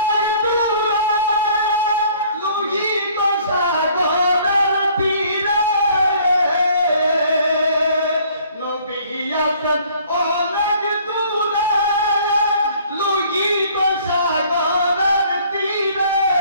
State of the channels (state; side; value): inverted; both; correlation -0.57